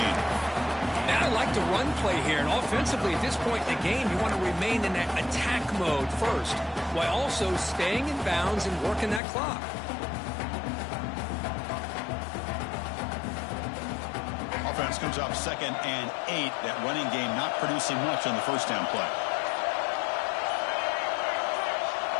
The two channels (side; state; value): right; drops out; at 9.2 s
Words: Now I like the run play here, and offensively at this point in the game, you want to remain in that attack mode first, while also staying in bounds and working that clock. Offense comes up 2nd and 8. That running game not producing much on the first down play.